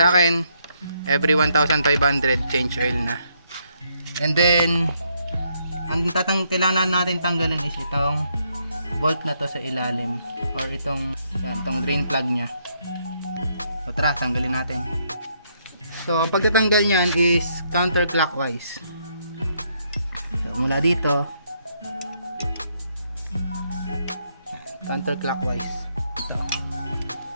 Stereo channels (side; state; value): both; inverted; correlation -0.74